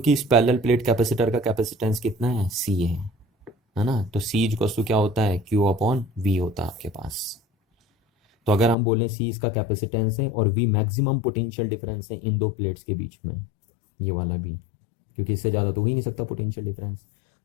इस पैरेलल प्लेट कैपेसिटर का कैपेसिटेंस कितना है? सी है ना। तो सी इक्वल्स टू क्या होता है? क्यू अपॉन वी होता है आपके पास। तो अगर हम बोलें सी इसका कैपेसिटेंस है और वी मैक्सिमम पोटेंशियल डिफरेंस है इन दो प्लेट्स के बीच में, ये वाला भी, क्योंकि इससे ज़्यादा तो हो ही नहीं सकता पोटेंशियल डिफरेंस।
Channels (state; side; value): drops out; right; at 8.8 s